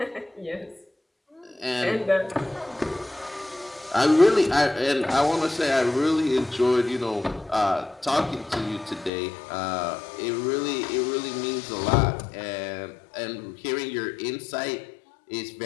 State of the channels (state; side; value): drops out; right; at 9.1 s